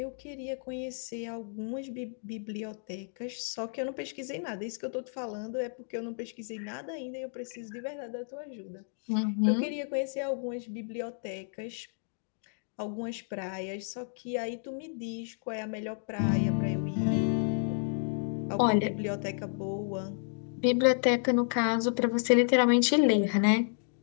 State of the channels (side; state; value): right; silent; digital silence